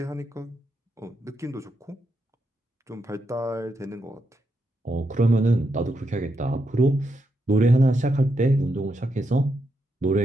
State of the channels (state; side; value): normal; both; correlation 0.83